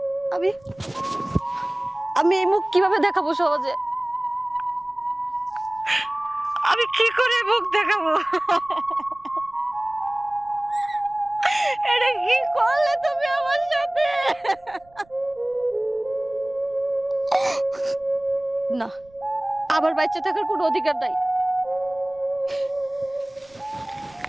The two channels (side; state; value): right; noise; rumble, 29 dB below the sound